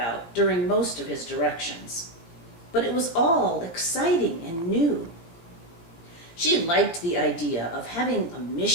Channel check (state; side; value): late; right; 17 ms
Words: during most of his directions, but it was all exciting and new. She liked the idea of having a